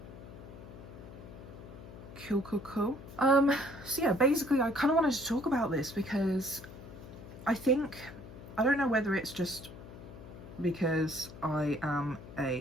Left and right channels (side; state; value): left; noise; hum, 15 dB below the sound